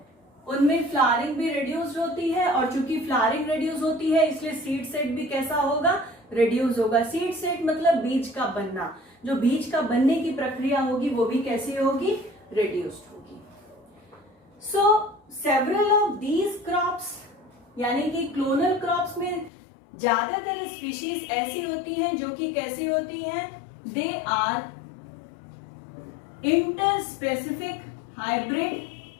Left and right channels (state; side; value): drops out; right; at 19.5 s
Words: उनमें flowering भी reduced होती है, और चूंकि फ्लावरिंग रिड्यूस होती है इसलिए सीड सेट भी कैसा होगा, रिड्यूस होगा. सीड सेट मतलब बीज का बनना, जो बीज का बनने की प्रक्रिया होगी वो भी कैसी होगी, रिड्यूस्ड होगी. सो सेवरल ऑफ दीज क्रॉप्स, यानी कि क्लोनल क्रॉप्स में ज्यादातर स्पीशीज ऐसी होती हैं जो कि कैसी होती हैं, दे आर इंटरस्पेसिफिक हाइब्रिड,